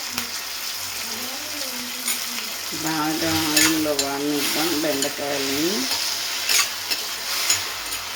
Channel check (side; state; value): both; identical; correlation 1.00